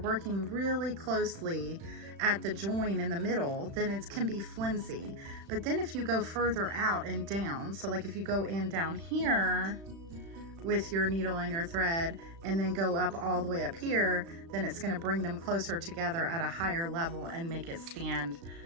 really closely at the join in the middle, then it can be flimsy. But then if you go further out and down, so like if you go in down here with your needle and your thread and then go up all the way up here, then it's going to bring them closer together at a higher level and make it stand,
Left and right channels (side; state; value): left; late; 36 ms